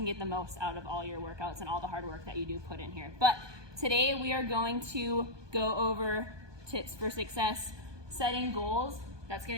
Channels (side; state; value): left; late; 1.2 ms